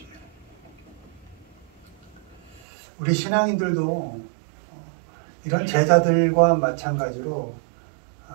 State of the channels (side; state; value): left; drops out; at 2.6 s